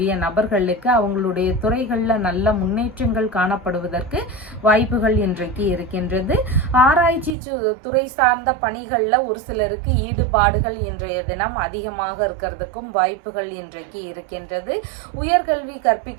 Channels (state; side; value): drops out; left; at 7.4 s